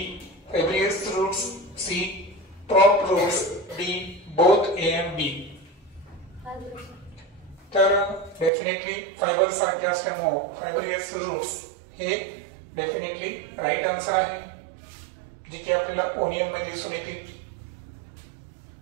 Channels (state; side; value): drops out; left; at 8.5 s